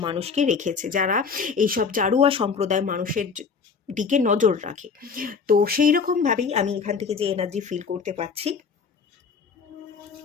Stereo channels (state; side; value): quieter; right; 5.6 dB